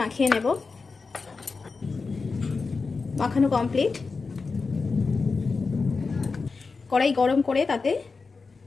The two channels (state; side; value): quieter; right; 4.4 dB